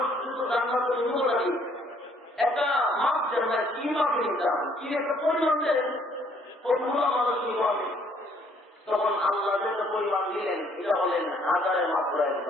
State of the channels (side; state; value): both; normal; correlation 0.64